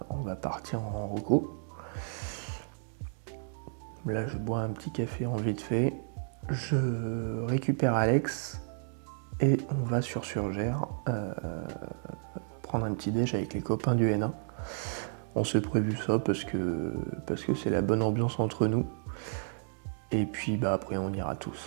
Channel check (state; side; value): silent; left; digital silence